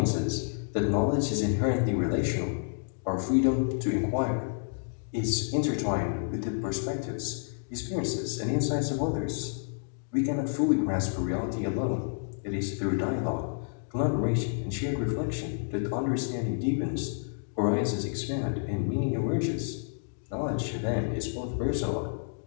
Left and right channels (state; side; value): silent; right; digital silence